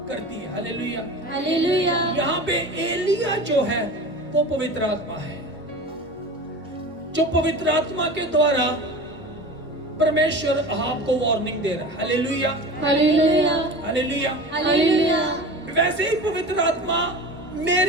करती है। Hallelujah, hallelujah. यहाँ पे एलिया जो है वो पवित्र आत्मा है, जो पवित्र आत्मा के द्वारा परमेश्वर अहाब को वार्निंग दे रहा है। Hallelujah, hallelujah. हालेलुया। हालेलुया। वैसे ही पवित्र आत्मा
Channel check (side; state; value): both; normal; correlation 0.34